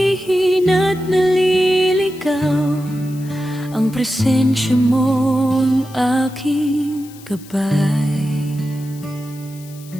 naliligaw, ang presensya mo ang aking gabay.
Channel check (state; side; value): noise; left; hiss, 22 dB below the sound